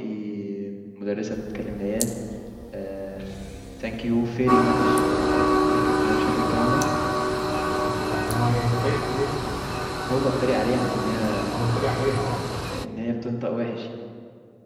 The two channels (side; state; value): both; identical; correlation 1.00